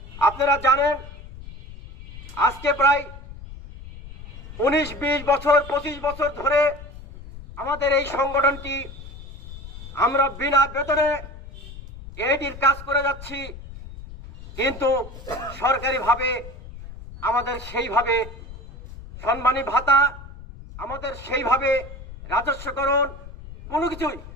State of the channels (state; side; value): noise; left; rumble, 14 dB below the sound